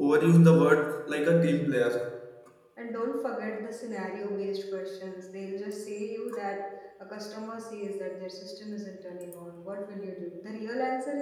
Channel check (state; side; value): identical; both; correlation 1.00